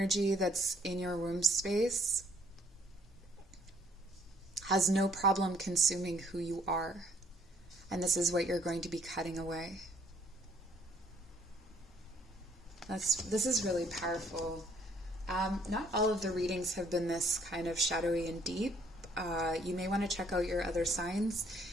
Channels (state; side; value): normal; both; correlation 0.64